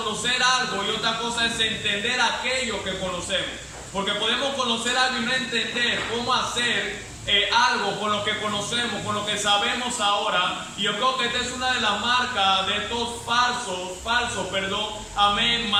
algo y otra cosa es entender aquello que conocemos. Porque podemos conocer algo y no entender cómo hacer algo con lo que conocemos, con lo que sabemos ahora. Y yo creo que esta es una de las marcas de estos falsos, amén,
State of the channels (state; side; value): identical; both; correlation 1.00